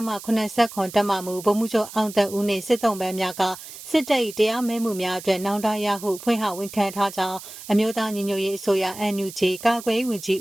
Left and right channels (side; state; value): right; noise; hiss, 14 dB below the sound